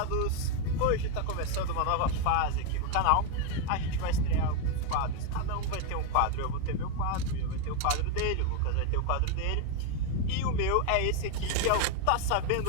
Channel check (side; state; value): both; different; correlation 0.01